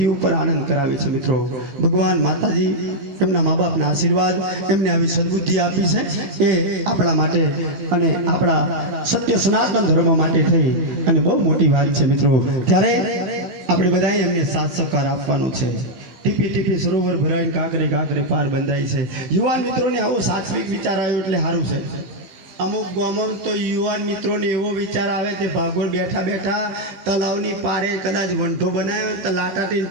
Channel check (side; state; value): left; late; 15 ms